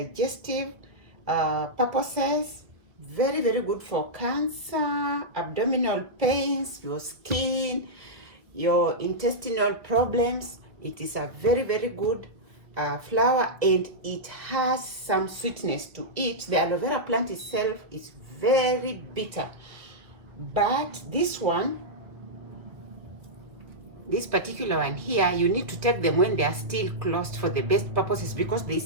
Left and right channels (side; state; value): left; late; 1.8 ms